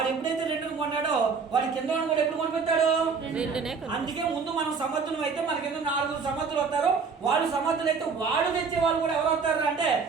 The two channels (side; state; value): left; quieter; 5.3 dB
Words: ఎప్పుడైతే 2 కొంటాడో వాడి కింద కూడా ఎప్పుడు కొనిపెట్టాడు? 2నే. అందుకే ముందు మనం సమర్థులు అయితే మన కింద 4 సమర్థులు వస్తారు. వాళ్ళు సమర్థులు అయితే వాడు తెచ్చే వాళ్ళు కూడా ఎవరు వస్తారు అంటే